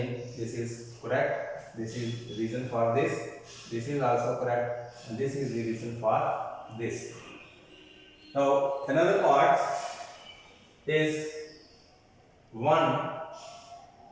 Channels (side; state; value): both; identical; correlation 1.00